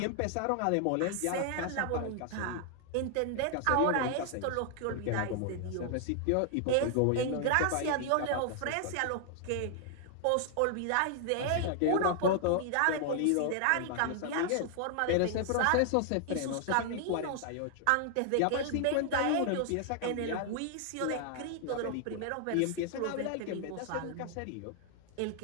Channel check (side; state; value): both; different; correlation 0.00